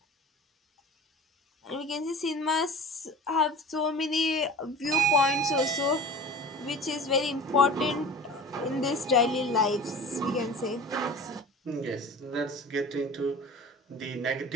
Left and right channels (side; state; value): both; normal; correlation 0.39